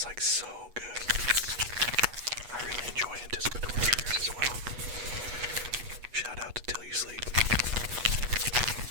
like so good. I really enjoy anticipatory triggers as well. Shout out to Till You Sleep.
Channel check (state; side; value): late; left; 8.2 ms